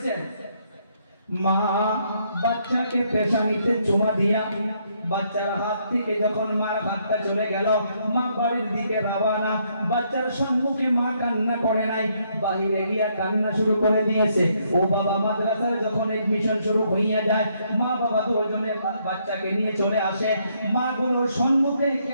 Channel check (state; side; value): inverted; both; correlation -0.72